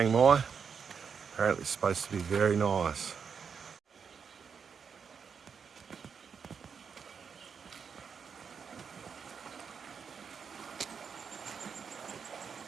Mai. Apparently it's supposed to be very nice.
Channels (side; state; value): left; quieter; 6.4 dB